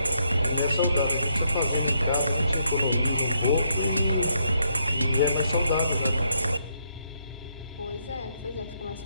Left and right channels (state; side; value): inverted; both; correlation -0.75